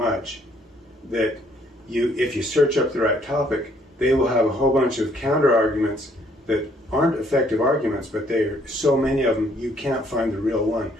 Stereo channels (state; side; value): normal; both; correlation 0.65